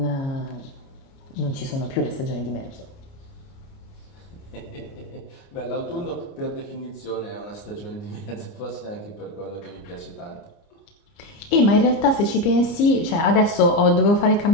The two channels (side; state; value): right; late; 29 ms